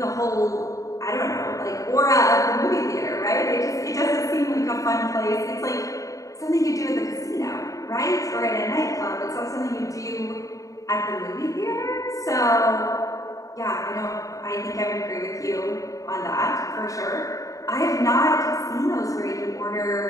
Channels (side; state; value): right; late; 0.16 ms